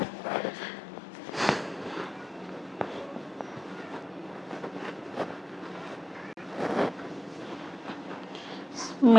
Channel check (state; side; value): normal; both; correlation 0.95